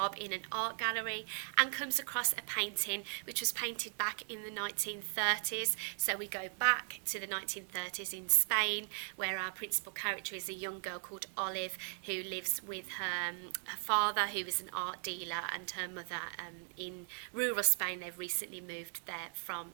in an art gallery and comes across a painting which was painted back in the 1930s. So we go back to the 1930s in Spain, where our principal character is a young girl called Olive, who lives with her father, who is an art dealer, and her mother in rural Spain. They've recently moved there from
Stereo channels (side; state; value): left; silent; 52 dB below the other